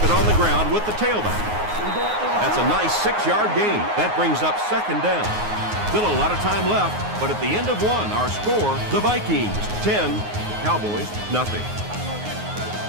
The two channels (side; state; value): left; late; 9.5 ms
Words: it on the ground with the tailback. That's a nice 6-yard gain. That brings up second down. Still a lot of time left, but at the end of one, our score, the Vikings 10, Cowboys nothing.